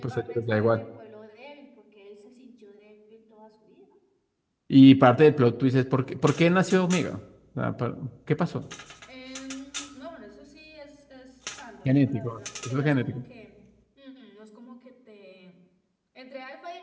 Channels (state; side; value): identical; both; correlation 1.00